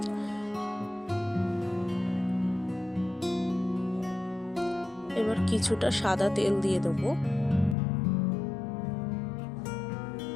এবার কিছুটা সাদা তেল দিয়ে দেবো।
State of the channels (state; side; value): drops out; right; at 7.8 s